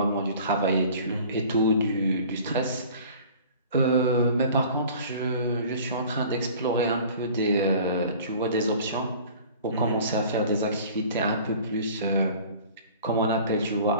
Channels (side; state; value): both; inverted; correlation -0.46